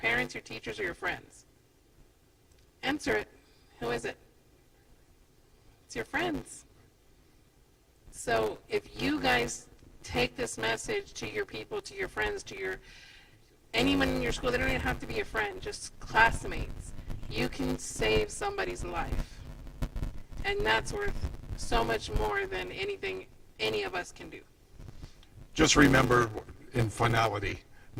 your teachers, or your friends? Answer it. Who is it? It's your friends. So if you guys take this message to your people, to your friends, to anyone in your school, they don't even have to be a friend, just classmates, you can save somebody's life. And that's worth so much more than anything any of us can do. Just remember, in finality,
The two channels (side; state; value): both; identical; correlation 1.00